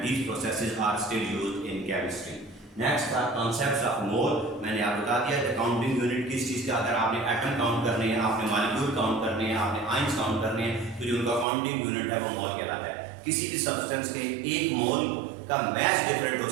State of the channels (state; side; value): drops out; left; at 11.5 s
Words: these processes are still used in chemistry. Next था concepts of mole. मैंने आपको बता दिया कि counting unit किस चीज़ का, अगर आपने एटम काउंट करने हैं, आपने मॉलिक्यूल काउंट करने हैं, आपने आयंस काउंट करने हैं, तो जो उनका काउंटिंग यूनिट है वो मोल कहलाता है। किसी भी सब्सटेंस के 1 मोल का मैच डिफरेंट हो